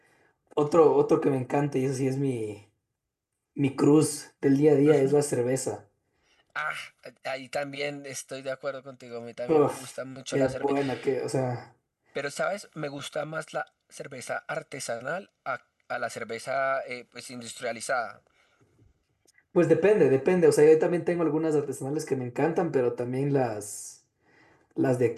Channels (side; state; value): both; identical; correlation 1.00